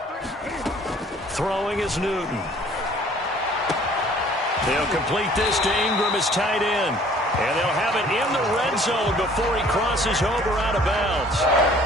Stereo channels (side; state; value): both; normal; correlation 0.55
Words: Throwing is Newton. They'll complete this to Ingram as tight end. And they'll have it in the red zone before he crosses over out of bounds.